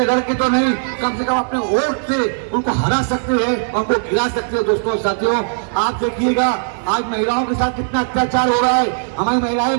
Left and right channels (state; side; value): silent; left; 60 dB below the other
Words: लड़ के तो नहीं, कम से कम अपने वोट से उनको हरा सकते हैं और उनको गिरा सकते हैं। दोस्तों साथियों, आप देखिएगा आज महिलाओं के साथ कितना अत्याचार हो रहा है। हमारी महिलाएं